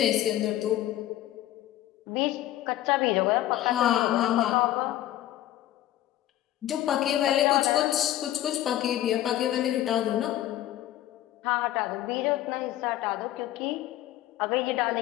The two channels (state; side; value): quieter; right; 13.7 dB